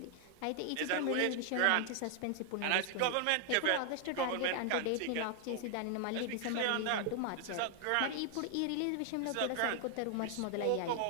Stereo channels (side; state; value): both; different; correlation 0.00